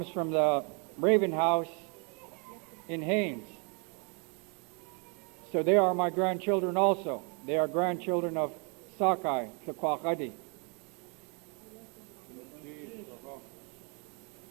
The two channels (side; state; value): left; quieter; 36.4 dB